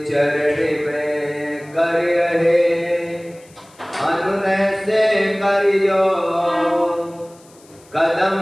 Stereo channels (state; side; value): noise; left; hiss, 28 dB below the sound